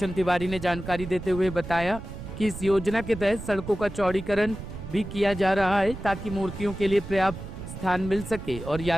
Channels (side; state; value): right; noise; rumble, 10 dB below the sound